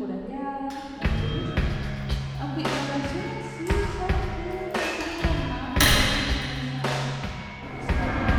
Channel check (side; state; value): both; identical; correlation 1.00